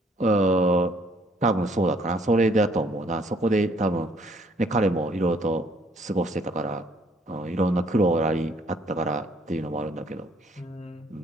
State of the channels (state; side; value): normal; both; correlation 0.63